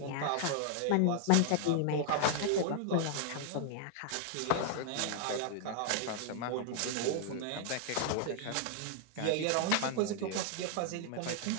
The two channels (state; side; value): different; both; correlation 0.00